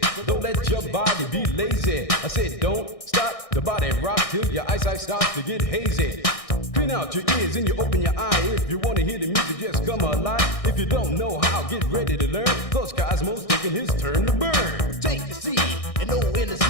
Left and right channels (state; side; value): late; right; 1.6 ms